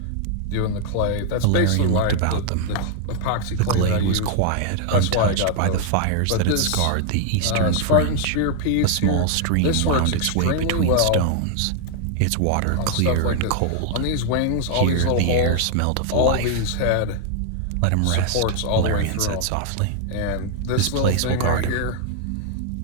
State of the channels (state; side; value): different; both; correlation 0.00